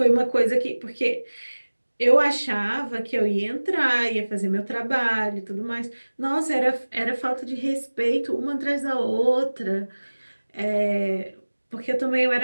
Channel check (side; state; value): both; inverted; correlation -1.00